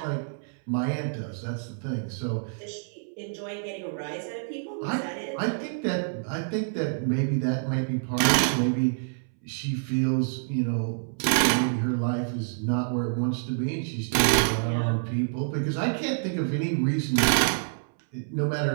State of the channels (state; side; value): silent; left; 60 dB below the other